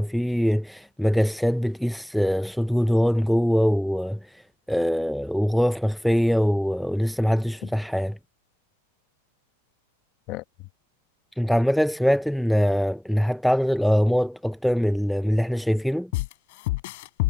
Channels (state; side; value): normal; both; correlation 0.97